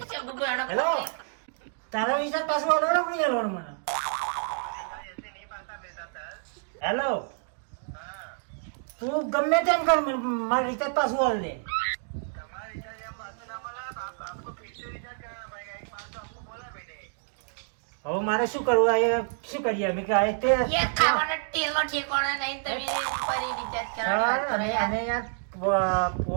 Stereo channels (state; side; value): silent; left; digital silence